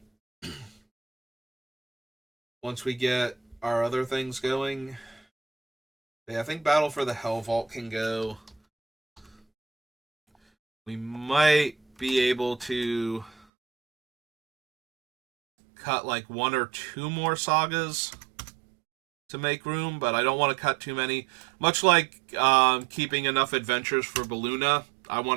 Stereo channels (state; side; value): drops out; left; at 13.4 s